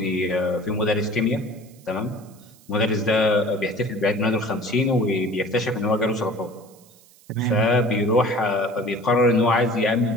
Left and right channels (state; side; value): noise; right; hiss, 27 dB below the sound